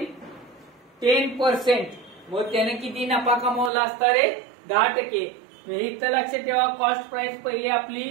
10%. मग त्याने किती नफा कमवला असता रे 10%. इथं लक्षात ठेवा कॉस्ट प्राइस पहिली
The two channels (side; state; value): left; drops out; at 3.7 s